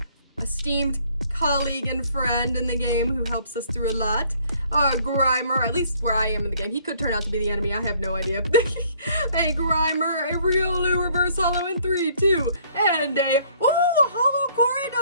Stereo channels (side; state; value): both; inverted; correlation -0.60